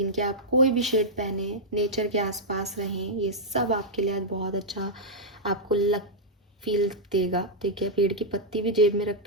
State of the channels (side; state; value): both; normal; correlation -0.07